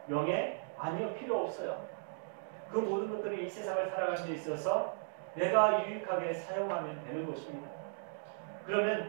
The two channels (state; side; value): silent; left; digital silence